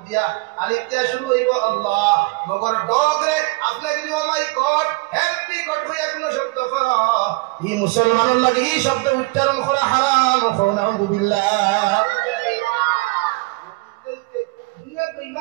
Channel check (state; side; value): quieter; left; 24.8 dB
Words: দিয়া, আলিফ দিয়া শুরু হইব আল্লাহ। মগর ডগরে আপনি যদি ও মাই গড হেল্প মি গড হইয়া কোন শব্দ কর, এই মুসলমানের লাগে এই শব্দ উচ্চারণ করা হারাম। নাউযুবিল্লাহ।